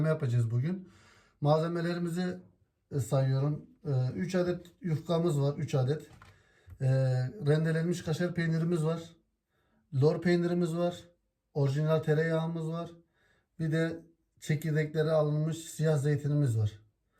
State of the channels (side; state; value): both; identical; correlation 1.00